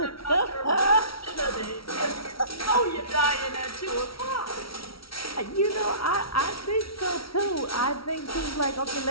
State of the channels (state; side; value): late; right; 0.75 ms